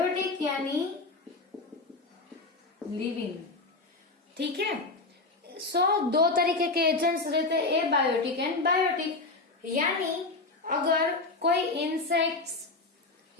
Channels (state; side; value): quieter; right; 3.4 dB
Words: यानी लिविंग। ठीक है, सो दो तरीके के एजेंट्स रहते हैं, एबायोटिक एंड बायोटिक। यानी अगर कोई इंसेक्ट्स